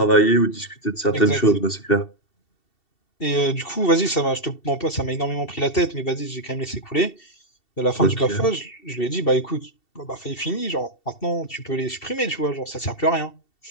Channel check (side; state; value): right; late; 2.7 ms